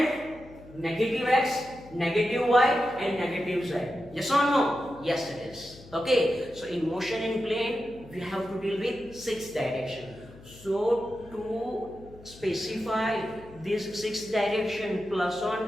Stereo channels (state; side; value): noise; left; hum, 20 dB below the sound